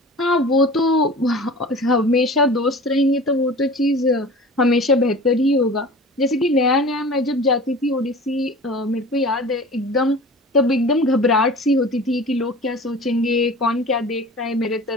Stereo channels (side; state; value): both; normal; correlation 0.39